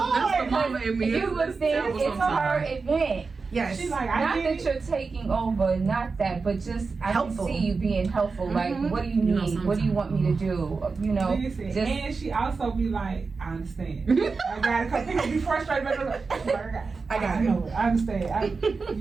the mama in me. You would think it's her event. Yes. She's like, Not that you're taking over, not that, but just I Helpful. can see you being helpful. Like, what do you need? What do you want me to do? You know, Listen, just and she also be like, I understand. I got it. Because people be frustrated. I got it. No, I understand.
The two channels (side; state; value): left; quieter; 4.5 dB